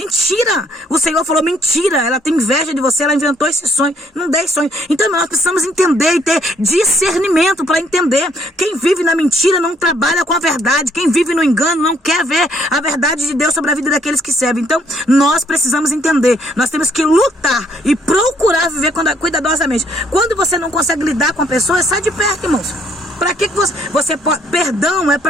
O Senhor falou mentira. Ela tem inveja de você, ela inventou esse sonho. Não dei sonho. Então nós precisamos entender e ter discernimento para entender. Quem vive na mentira não trabalha com a verdade. Quem vive no engano não quer ver a verdade de Deus sobre a vida daqueles que servem. Então nós precisamos entender. Nós temos que lutar e procurar viver cuidadosamente. Quando você não consegue lidar com a pessoa, sai de perto, irmãos. Para que você pode? Perdão é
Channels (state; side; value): normal; both; correlation 0.66